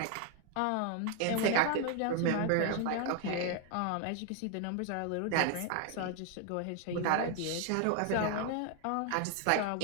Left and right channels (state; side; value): different; both; correlation 0.00